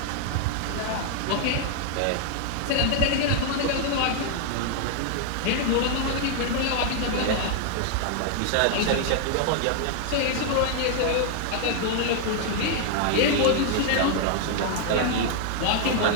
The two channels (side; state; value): both; different; correlation 0.00